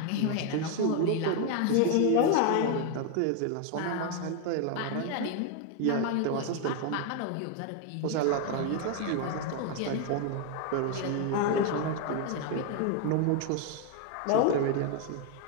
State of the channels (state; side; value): different; both; correlation 0.01